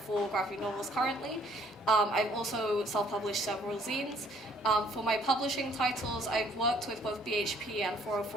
graphic novels currently. I've also self-published several zines. For my publishing titles, I've worked with both BHP and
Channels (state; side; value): normal; both; correlation 0.62